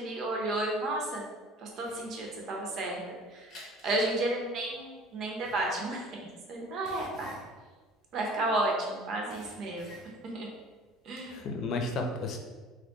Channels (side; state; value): both; normal; correlation 0.46